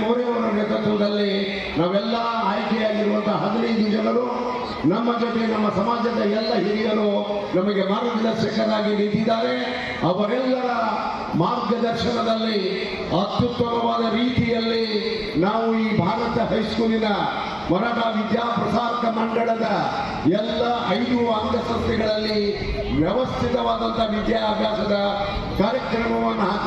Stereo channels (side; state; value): both; identical; correlation 1.00